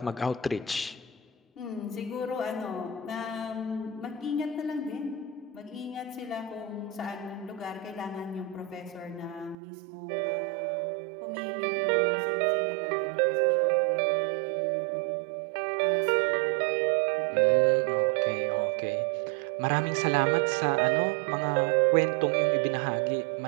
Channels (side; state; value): left; drops out; at 9.6 s